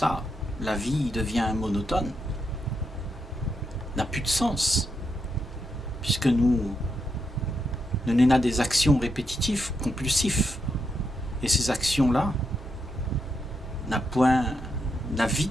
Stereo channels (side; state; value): both; normal; correlation 0.83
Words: la vie devient monotone, n'a plus de sens, puisque nous n'avons des actions répétitives, compulsives. Et ces actions-là n'a point la vie